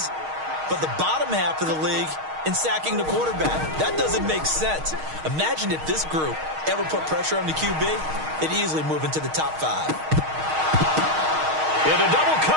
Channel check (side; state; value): left; late; 6.4 ms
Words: but the bottom half of the league in sacking the quarterback. That doesn't make sense. Imagine if this group ever put pressure on the QB, they'd easily move into the top 5. Into double